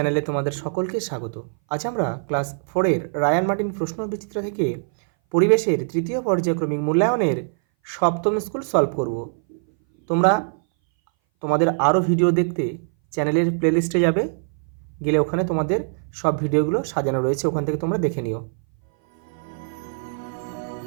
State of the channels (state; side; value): silent; left; 59 dB below the other